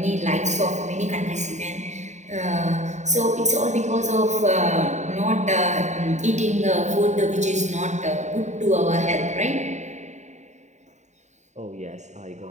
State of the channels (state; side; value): late; left; 0.34 ms